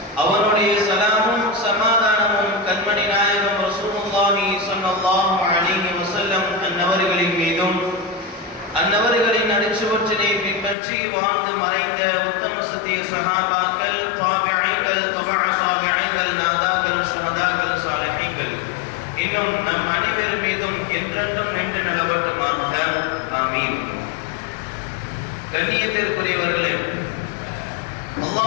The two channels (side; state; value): right; drops out; at 10.8 s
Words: அவனுடைய சலாமும் சமாதானமும் கண்மணி நாயகம் ரசூலுல்லாஹி ஸல்லல்லாஹு அலைஹி வஸல்லம் அன்னவர்களின் மீதும் அன்னவர்களின் அடிச்சுவற்றினை பின்பற்றி வாழ்ந்து மறைந்த உத்தம சத்திய சஹாபாக்கள், தாபிஈன்கள், தபஅ தாபிஈன்கள், நாதாக்கள், ஷஹதாக்கள், சாலிஹீன்கள் இன்னும் நம் அனைவர் மீதும் என்றென்றும் நின்று நிலவட்டுமாக. ஆமீன். கண்ணியத்திற்குரியவர்களே,